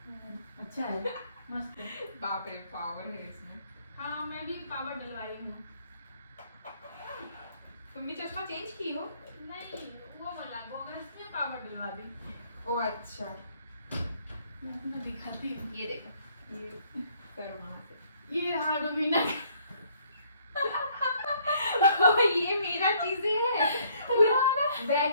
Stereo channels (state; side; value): inverted; both; correlation -0.64